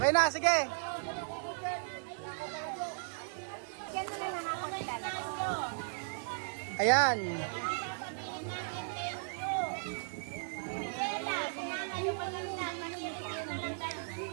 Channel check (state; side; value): silent; left; digital silence